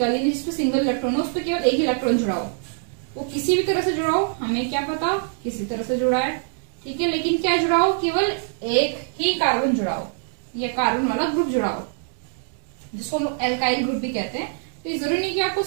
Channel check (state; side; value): silent; left; digital silence